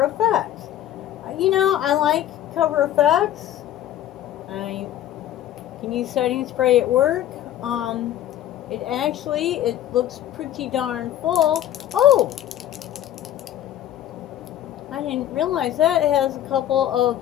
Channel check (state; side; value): quieter; right; 12.1 dB